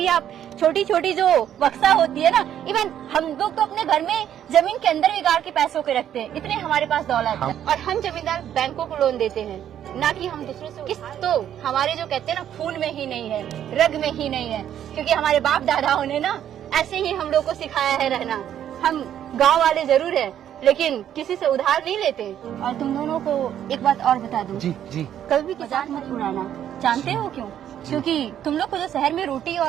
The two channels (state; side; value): quieter; left; 10.3 dB